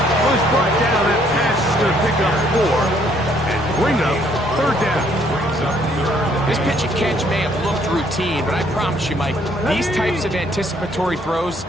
Was brought down. That pass is going to pick up 4 and bring up third down. This pitch and catch may have looked routine, but I promise you, Mike, these types of anticipatory throws,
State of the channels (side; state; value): both; normal; correlation 0.66